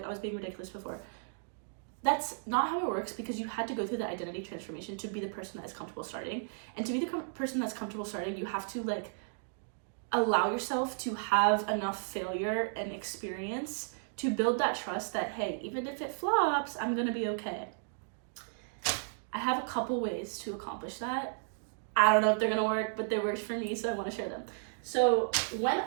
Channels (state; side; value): silent; left; digital silence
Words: I was being ridiculous before. That's not how it works, because you had to go through the identity transformation to be the person that is comfortable starting. And to be the person that's comfortable starting, you have to, like, allow yourself to have enough failure and experience to build that trust that, hey, even if it flops, I'm gonna be okay. I have a couple ways to accomplish that. I don't know if they're gonna work, but they worked for me, so I want to share them. So when